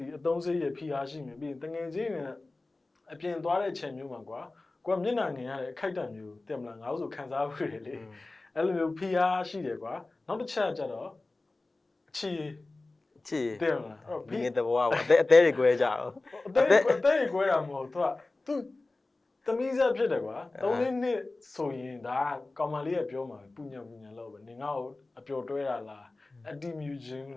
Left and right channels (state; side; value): quieter; right; 3.2 dB